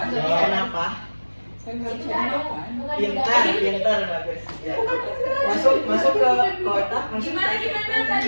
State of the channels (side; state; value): both; inverted; correlation -1.00